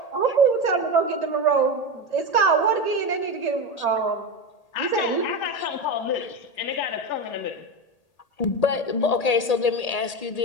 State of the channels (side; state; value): right; late; 1.8 ms